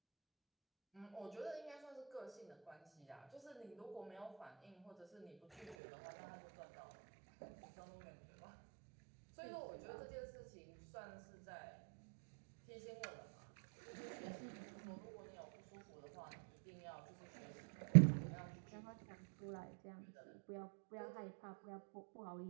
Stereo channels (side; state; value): left; drops out; at 5.8 s